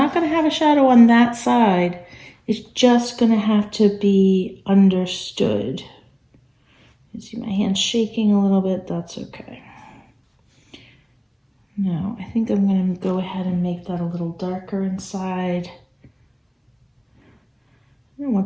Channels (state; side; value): identical; both; correlation 1.00